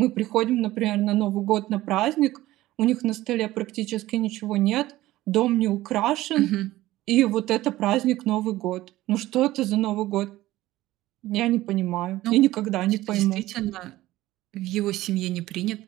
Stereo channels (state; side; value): quieter; left; 16.4 dB